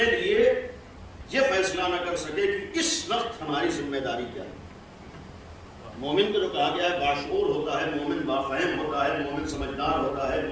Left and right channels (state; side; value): identical; both; correlation 1.00